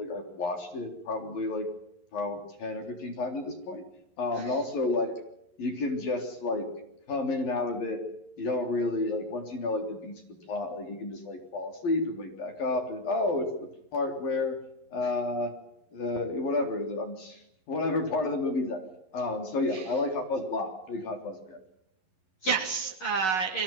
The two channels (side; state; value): right; late; 11 ms